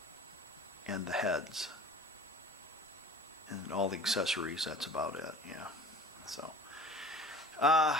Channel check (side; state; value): both; normal; correlation 0.42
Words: and the heads and all the accessories. That's about it. Yeah. So